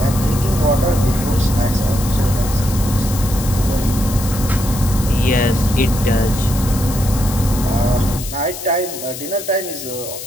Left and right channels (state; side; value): noise; left; hiss, 10 dB below the sound